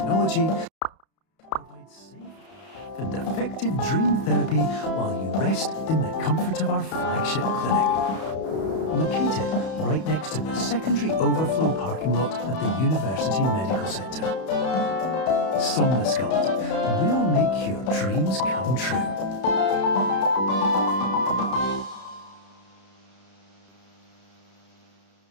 provides safe and effective dream therapy while you rest in the comfort of our flagship clinic. Located right next to the secondary overflow parking lot at the University Medical Center. Somnosculpt, we'll make your dreams come true.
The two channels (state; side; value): late; right; 31 ms